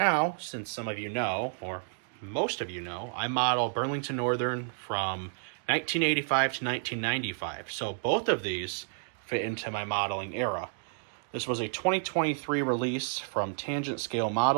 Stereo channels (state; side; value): silent; left; digital silence